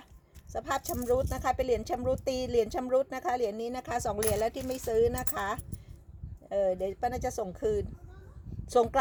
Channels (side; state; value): both; identical; correlation 1.00